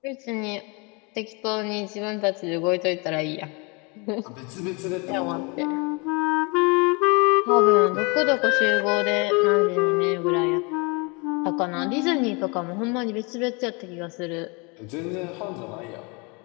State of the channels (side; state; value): right; quieter; 30.2 dB